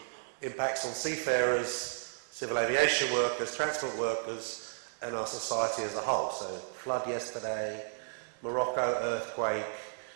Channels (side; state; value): left; silent; digital silence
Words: impacts on seafarers, civil aviation workers, transport workers, and our society as a whole. So flood yesterday, Morocco earthquake,